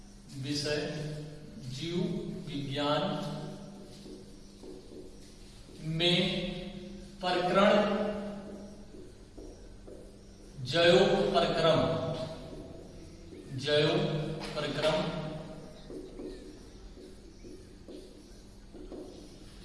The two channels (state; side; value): identical; both; correlation 1.00